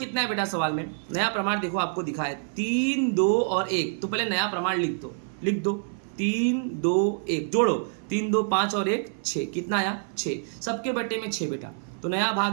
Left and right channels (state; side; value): silent; left; 55 dB below the other